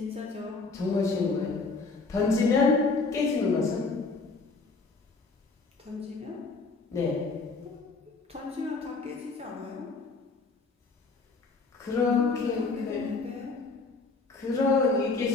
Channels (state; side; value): quieter; right; 4.0 dB